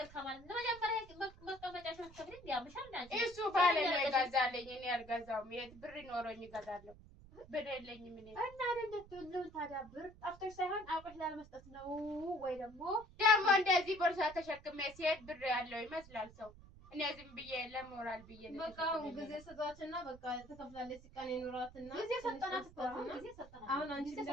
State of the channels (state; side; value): noise; right; rumble, 20 dB below the sound